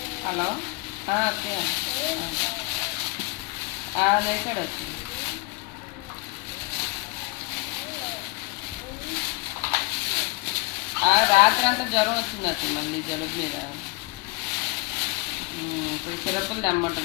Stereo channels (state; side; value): quieter; right; 26.0 dB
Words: హలో లేచాడు వచ్చి. రాత్రి అంతా జ్వరం వచ్చింది మళ్ళీ జలుబు మీద. ఇప్పుడు సిరప్పులు